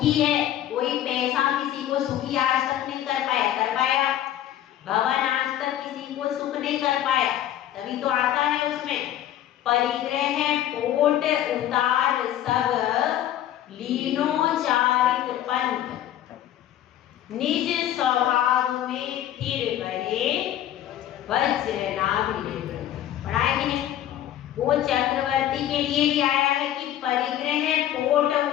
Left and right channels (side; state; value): right; quieter; 12.0 dB